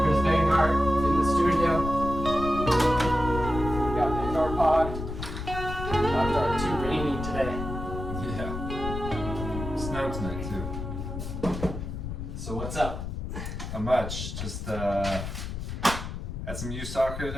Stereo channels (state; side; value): noise; left; rumble, 6 dB below the sound